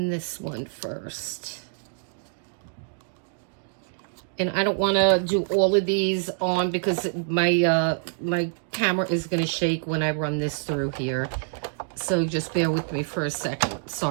this one first. And I don't want to do all of these on because my my camera is going to shake when I run this through here. So just bear with me for a second.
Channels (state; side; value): silent; left; digital silence